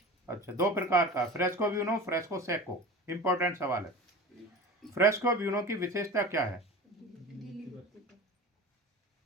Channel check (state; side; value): normal; both; correlation 0.34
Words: अच्छा, 2 प्रकार का, fresco buono, fresco Seiko. Important सवाल है। फ्रेस्को ब्यूनो की विशेषता क्या है?